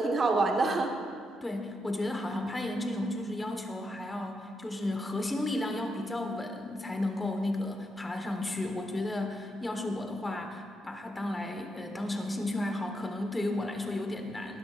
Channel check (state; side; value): normal; both; correlation 0.82